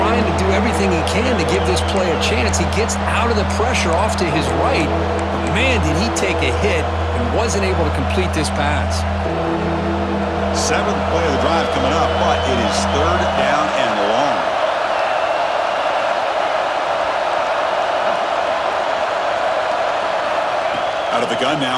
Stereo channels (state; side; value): identical; both; correlation 1.00